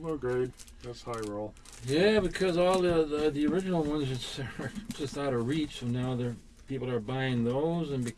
grade. That's high roll. Yeah, because all the original ones are just out of reach, so now people are buying those, and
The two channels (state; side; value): identical; both; correlation 1.00